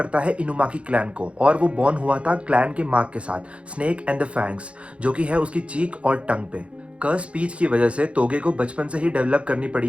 है इनुमाकी क्लैन को और वो बॉर्न हुआ था क्लैन के मार्क के साथ, स्नेक एंड द फैंग्स, जो कि है उसकी चीक और टंग पे। कर्स स्पीच की वजह से तोगे को बचपन से ही डेवलप करनी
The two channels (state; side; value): late; left; 0.061 ms